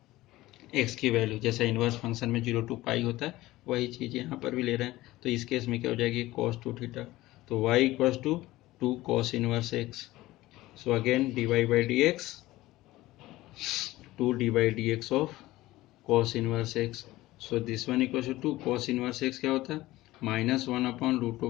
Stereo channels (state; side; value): quieter; right; 17.5 dB